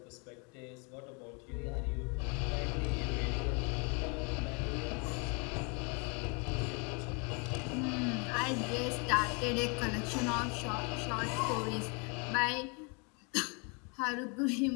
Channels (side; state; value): right; quieter; 33.9 dB